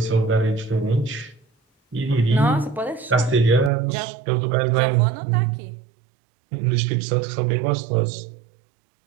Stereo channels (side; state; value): left; drops out; at 3.7 s